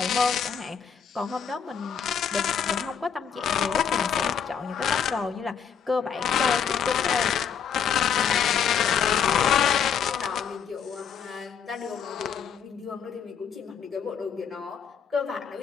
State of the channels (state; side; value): quieter; right; 7.4 dB